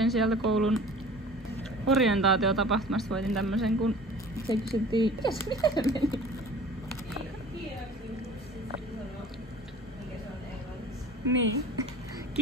sieltä koulun orientaatiotapahtumasta, voitin tämmösen kun se kysyttiin, mitä se meni? Niin.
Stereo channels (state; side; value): normal; both; correlation 0.43